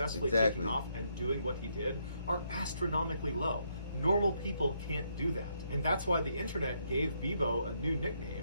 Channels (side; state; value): both; inverted; correlation -0.75